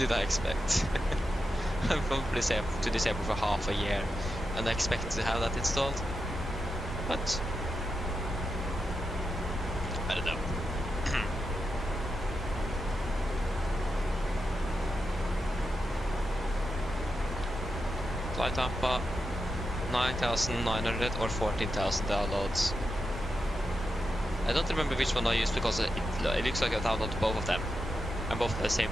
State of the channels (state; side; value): normal; both; correlation 0.87